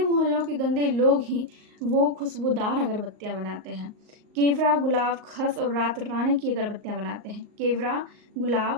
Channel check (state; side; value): late; left; 38 ms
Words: के गंदे लोग ही वो खुशबूदार अगरबत्तियां बनाते हैं। केवड़ा, गुलाब, खस और रात रानी की अगरबत्तियां बनाते हैं। केवड़ा,